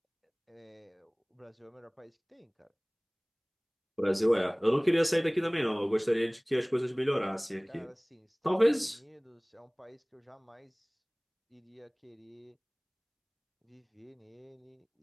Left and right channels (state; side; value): identical; both; correlation 1.00